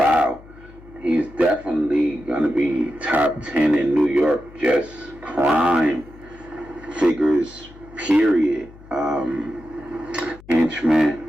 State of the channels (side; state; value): left; noise; hum, 21 dB below the sound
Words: He's definitely gonna be top 10 in New York, just crime figures, period. Henchman